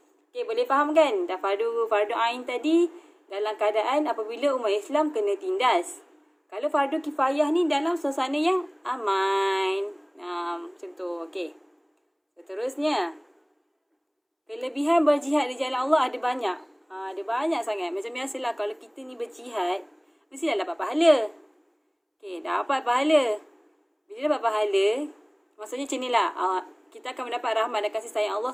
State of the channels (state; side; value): identical; both; correlation 1.00